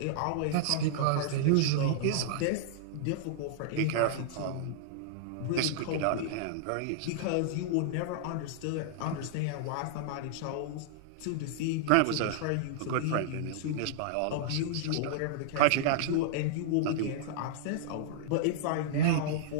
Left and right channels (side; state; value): both; different; correlation -0.01